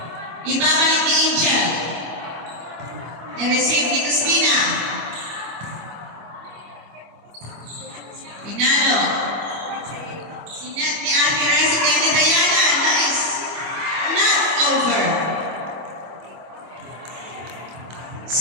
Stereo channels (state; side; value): late; left; 25 ms